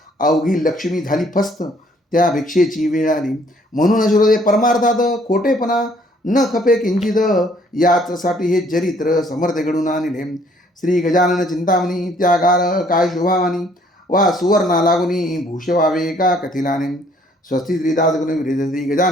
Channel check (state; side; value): normal; both; correlation 0.62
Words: अवघी लक्ष्मी झाली फस्त, त्या भिक्षेची वेळ आली. म्हणून श्रोते परमार्थात खोटेपणा न खपे किंचित, याचसाठी हे चरित्र समर्थ घडून आणले. श्री गजानन चिंतामणी त्यागार काय शोभावानी, वा सुवर्णा लागुनी भूष व्हावे का कथिलाने. स्वस्ती श्रीदास गुण विरेज श्री